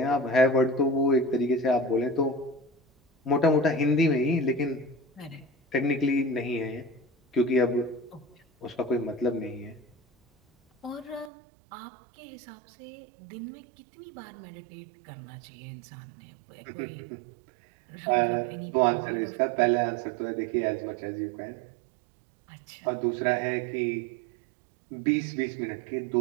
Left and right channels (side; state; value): left; drops out; at 11.3 s